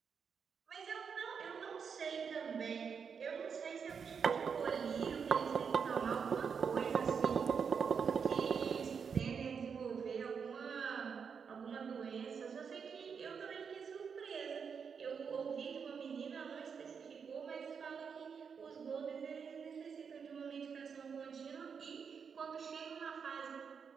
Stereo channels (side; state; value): left; quieter; 6.4 dB